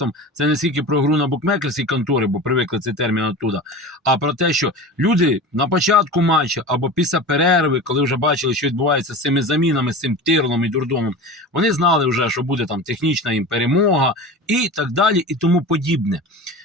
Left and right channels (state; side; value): normal; both; correlation 0.31